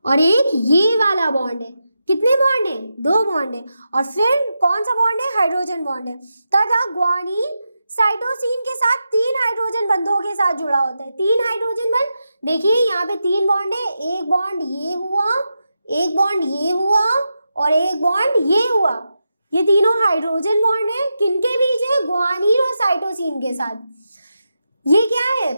और एक ये वाला बॉन्ड है, कितने बॉन्ड है, 2 बॉन्ड है। और फिर कौन सा बॉन्ड है, हाइड्रोजन बॉन्ड है। तथा ग्वानिन साइटोसिन के साथ 3 हाइड्रोजन बंधों के साथ जुड़ा होता है, 3 हाइड्रोजन बंध, देखिए यहाँ पे 3 बॉन्ड है, एक बॉन्ड ये हुआ, एक बॉन्ड ये हुआ और एक बॉन्ड ये हुआ, ये तीनों हाइड्रोजन बॉन्ड है, किनके बीच है, ग्वानिन और साइटोसिन के साथ। ये क्या है,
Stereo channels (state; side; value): inverted; both; correlation -0.88